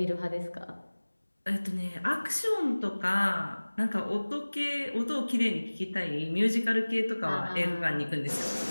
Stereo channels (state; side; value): inverted; both; correlation -1.00